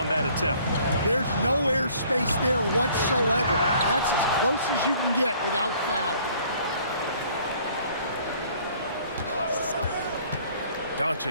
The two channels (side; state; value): both; inverted; correlation -0.57